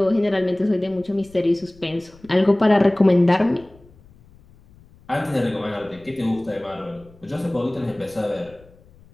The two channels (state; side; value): noise; left; rumble, 26 dB below the sound